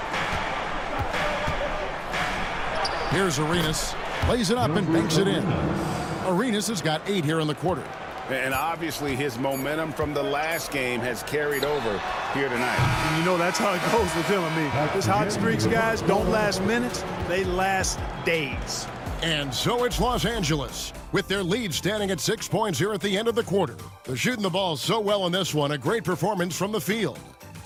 Here's Arenas. Plays it up and banks it in. Arenas has got 8 here in the quarter. And obviously his momentum from the last game has carried over here tonight. And you know that's how it goes with him. I mean, his hot streaks, guys, don't last minutes. They last days. And so it's Los Angeles, with their lead standing at 6 points here at the end of the quarter. They're shooting the ball so well in this one, a great performance from the field.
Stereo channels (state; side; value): identical; both; correlation 1.00